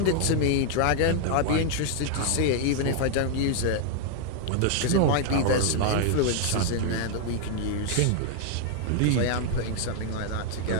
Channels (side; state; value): both; different; correlation 0.00